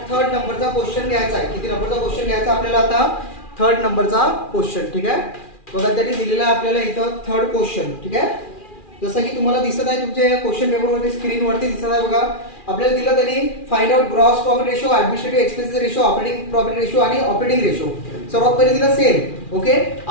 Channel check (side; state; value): right; late; 2.4 ms